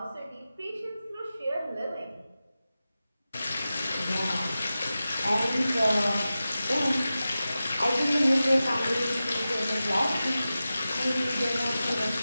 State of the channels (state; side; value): inverted; both; correlation -0.94